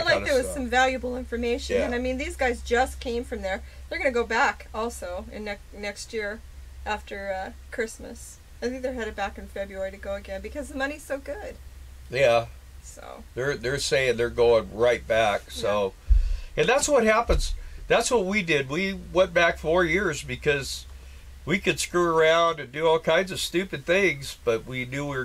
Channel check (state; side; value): identical; both; correlation 1.00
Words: kind of stuff. I felt like there was some valuable information, and I mean, these guys just came from there. They're going to go back also in next year after Christmas. I think they're headed back in February to go again because the money's so good. Yeah. So they're saying they're going right back. So, and that's what happens. That's what we did. We went back 4 years because we could screw around and do all kinds of stupid things, but we knew we were